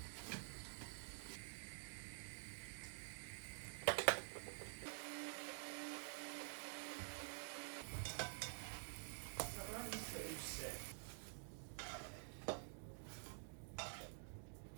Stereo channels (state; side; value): silent; left; digital silence